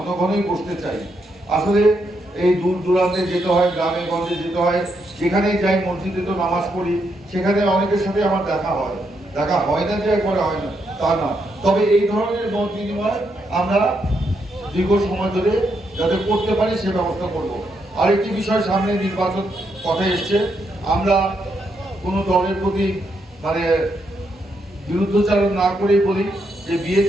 ঘনই বসতে চাই। আসলে এই দূর দূরান্তে যেতে হয়, গ্রামে গঞ্জে যেতে হয়, যেখানেই যাই, মসজিদে তো নামাজ পড়ি, সেখানে অনেকের সাথে আমার দেখা হয় না যে একবারে হয় না তা না, তবে এই ধরনের মত বিনিময় আমরা দীর্ঘ সময় ধরে যাতে করতে পারি সে ব্যবস্থা করব। আরেকটি বিষয়, সামনে নির্বাচন কথা এসছে, আমরা কোনো দলের প্রতি মানে বিরুদ্ধচারণ না করেই বলি যে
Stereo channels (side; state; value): both; normal; correlation 0.79